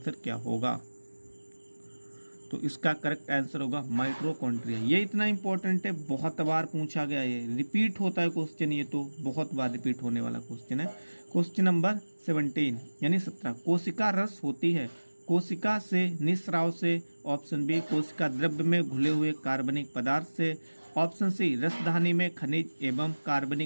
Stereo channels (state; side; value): inverted; both; correlation -1.00